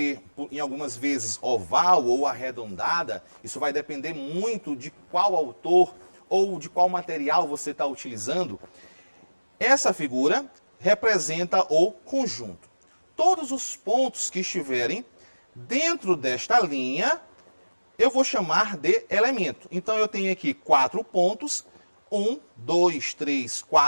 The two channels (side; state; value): both; inverted; correlation -1.00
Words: em algumas vezes, oval ou arredondada, isso vai depender muito de qual autor ou de qual material você está utilizando. Essa figura representa o conjunto. Todos os pontos que estiverem dentro desta linha, eu vou chamar de elemento. Então eu tenho aqui 4 pontos, 1, 2, 3,